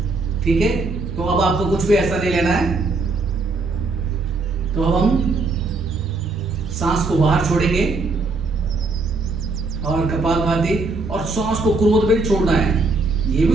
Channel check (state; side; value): quieter; left; 3.6 dB